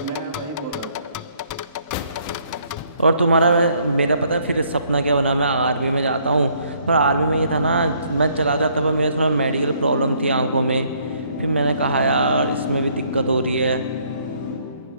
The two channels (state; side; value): inverted; both; correlation -0.66